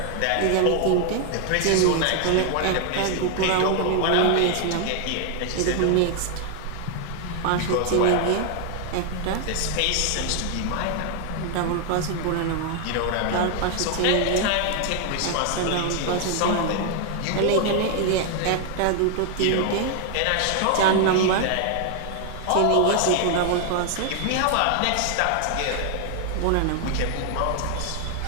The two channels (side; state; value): both; different; correlation 0.00